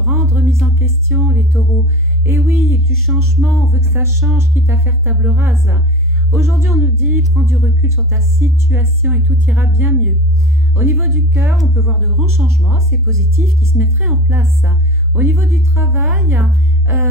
remise en question, les taureaux. Et oui, du changement, on veut que ça change, quitte à faire table rase. Aujourd'hui, on nous dit, prends du recul sur ta situation et tout ira bien mieux. Au niveau du cœur, on peut voir de grands changements, c'est positif, qui se mettraient en place. Au niveau du travail,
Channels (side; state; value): both; normal; correlation 0.33